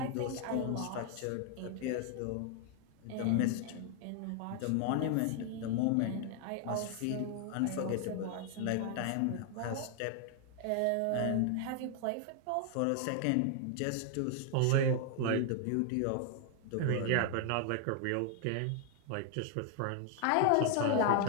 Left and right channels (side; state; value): both; different; correlation 0.00